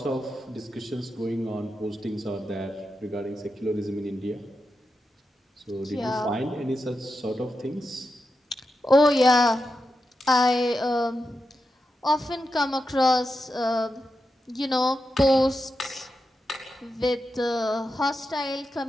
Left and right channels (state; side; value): normal; both; correlation 0.88